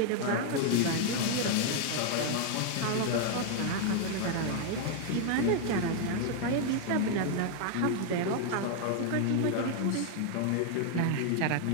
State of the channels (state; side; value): different; both; correlation 0.00